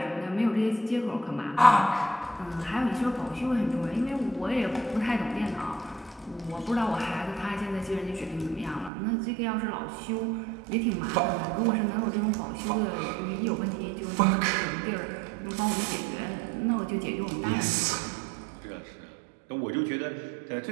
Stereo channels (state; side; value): drops out; left; at 8.9 s